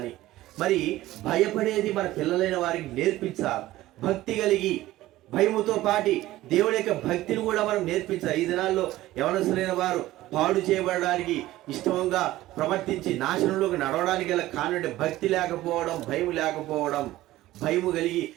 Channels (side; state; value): left; quieter; 16.1 dB